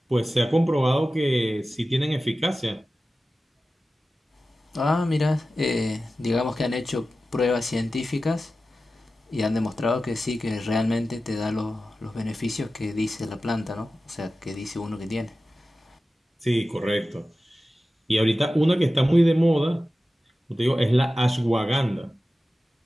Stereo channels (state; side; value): normal; both; correlation 0.94